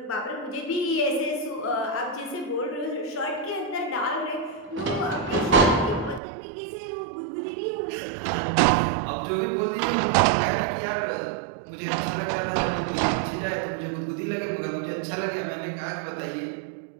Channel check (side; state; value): left; drops out; at 6.2 s